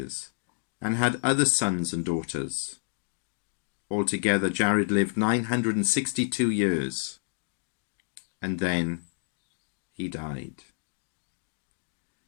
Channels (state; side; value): silent; right; digital silence